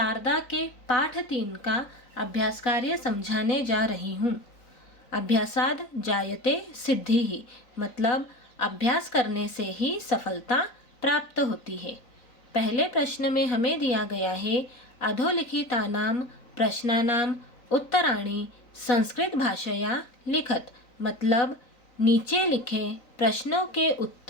के पाठ 3 का अभ्यास कार्य समझाने जा रही हूँ। अभ्यासाद जायते सिद्धि, मतलब अभ्यास करने से ही सफलता प्राप्त होती है। पहले प्रश्न में हमें दिया गया है अधोलिखितानां प्रश्नानां उत्तराणि संस्कृत भाषया लिखत, मतलब नीचे लिखे प्रश्नों के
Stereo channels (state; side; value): late; right; 3.9 ms